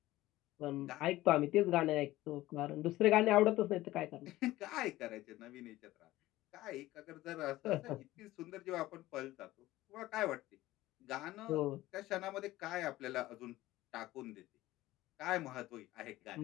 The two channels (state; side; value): quieter; right; 16.8 dB